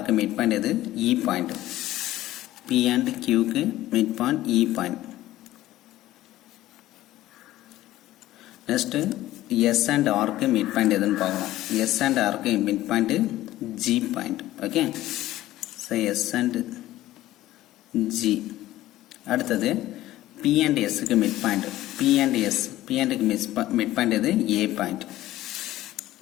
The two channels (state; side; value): quieter; right; 15.3 dB